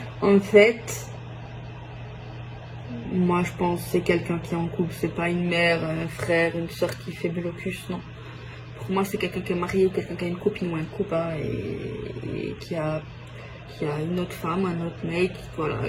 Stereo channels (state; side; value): identical; both; correlation 1.00